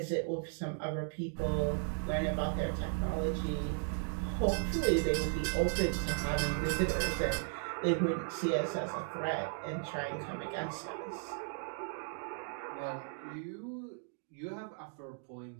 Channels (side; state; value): left; silent; 54 dB below the other